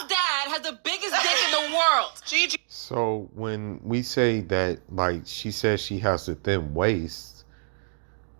dad has the biggest dick in the world. Gigi. So when we say that, like, she says she has a thin waist,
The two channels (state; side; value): silent; left; digital silence